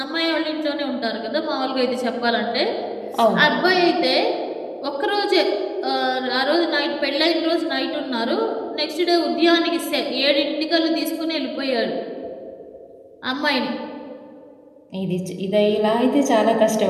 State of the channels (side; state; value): both; identical; correlation 1.00